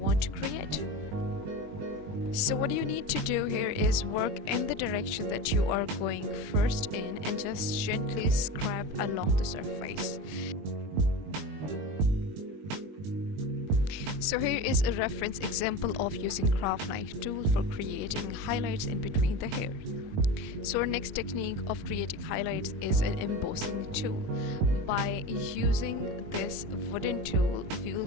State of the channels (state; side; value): late; left; 21 ms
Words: to create. So what you need to do here is work in the direction that you are going first in and just gently scrap along the surface. So here is a reference example of using craft knife tool for creating highlights in between the hair. So our next technique of creating highlights is an embossing tool. By using this wooden tool, we will